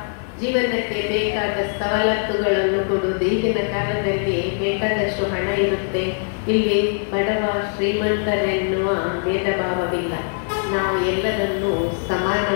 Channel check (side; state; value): right; silent; digital silence